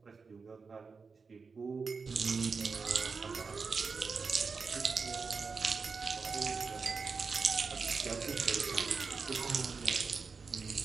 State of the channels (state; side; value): quieter; left; 4.9 dB